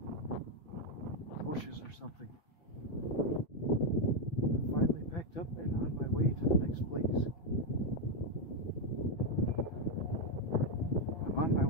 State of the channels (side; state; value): right; late; 5.9 ms